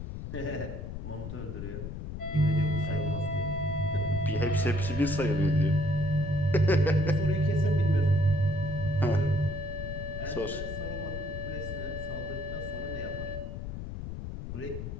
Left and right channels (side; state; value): left; noise; rumble, 7 dB below the sound